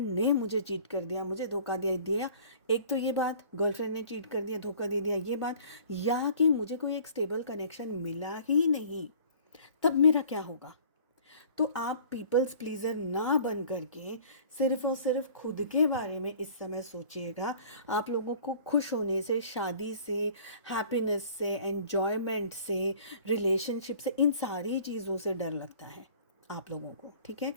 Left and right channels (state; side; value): inverted; both; correlation -0.49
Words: ने मुझे चीट कर दिया, मुझे धोखा दे दिया, एक तो ये बात, गर्लफ्रेंड ने चीट कर दिया, धोखा दे दिया, ये बात, या कि मुझे कोई एक स्टेबल कनेक्शन मिला ही नहीं, तब मेरा क्या होगा। तो आप पीपल्स प्लीज़र ना बन करके सिर्फ और सिर्फ खुद के बारे में इस समय सोचिएगा। आप लोगों को खुश होने से, शादी से, हैप्पीनेस से, एन्जॉयमेंट से, रिलेशनशिप से, इन सारी चीज़ों से डर लगता है आप लोगों को, ठीक है।